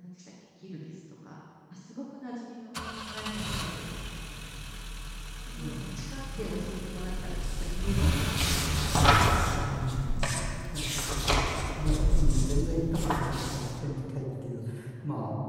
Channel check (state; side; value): identical; both; correlation 1.00